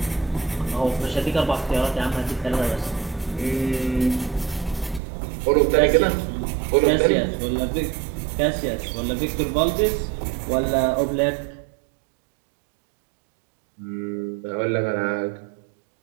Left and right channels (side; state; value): left; drops out; at 5.0 s